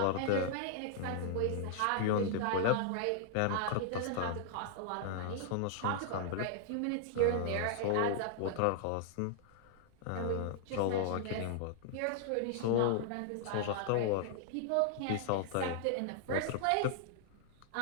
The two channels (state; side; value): different; both; correlation -0.01